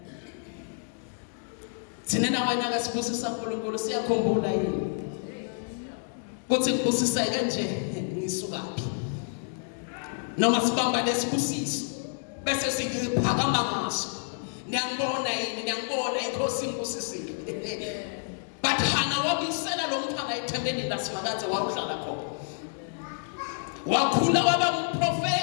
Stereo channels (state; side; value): silent; right; digital silence